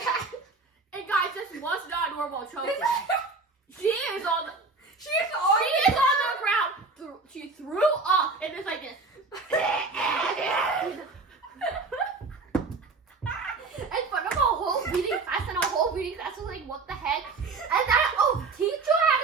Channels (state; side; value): quieter; left; 4.0 dB